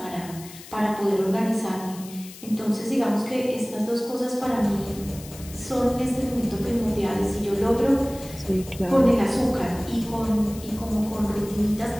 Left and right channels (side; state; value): left; noise; hiss, 17 dB below the sound